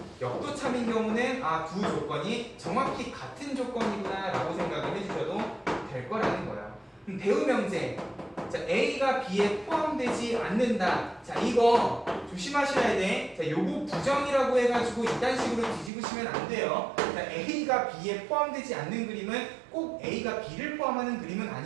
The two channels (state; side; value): drops out; left; at 15.9 s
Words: 역도 참인 경우는 두 조건이 정확히 같은 조건이구나 라고 생각을 해주셔도 될 거라는 거예요. 대우 명제, 자, A가 B에 포함되지 않는다. 자, 이거 조심하셔야 돼. 자, 요거 부정이라고 해가지고 이딴 식으로 뒤집으시면 안 돼요. 자, A가 B에 포함되지 않는 그림은 꼭 A가 B를 포함하는 그림은